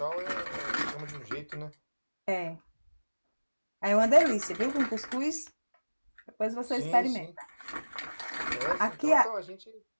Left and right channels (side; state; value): both; inverted; correlation -1.00